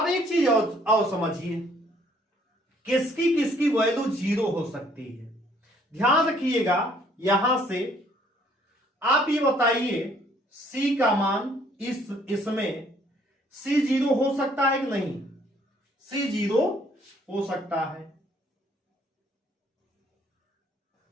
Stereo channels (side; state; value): both; normal; correlation 0.63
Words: एक चीज और समझिए, किसकी किसकी वैल्यू 0 हो सकती है। ध्यान रखिएगा, यहां से आप ये बताइए c का मान इसमें c 0 हो सकता है कि नहीं, c 0 हो सकता है।